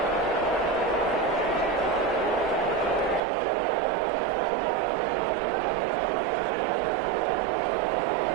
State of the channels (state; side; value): drops out; left; at 3.2 s